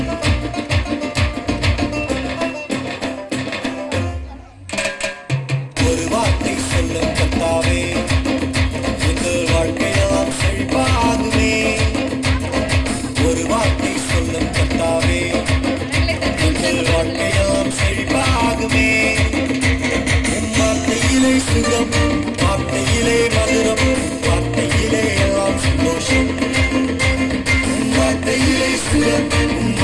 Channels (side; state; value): both; identical; correlation 1.00